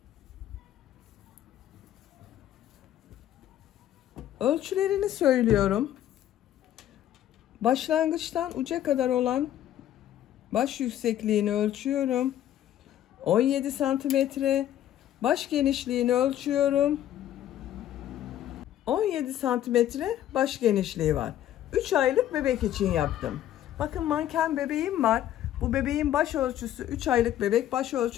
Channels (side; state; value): right; quieter; 12.0 dB